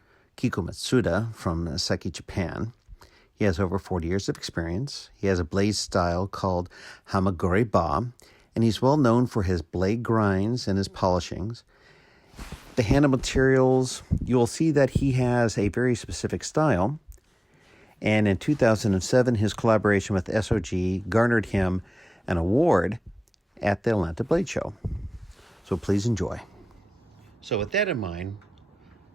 Kiku Matsuda from Seki Japan. He has over 40 years of experience. He has a blade style called kikuhamaguri-ba, and he's well known for his blade grinds and his polishings. The handle materials, you'll see that he has a very specific style. And in 2007, his collaboration with SOG garnered him an award at the Atlanta Blade Show. So please enjoy. So with that in mind,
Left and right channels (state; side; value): normal; both; correlation 0.98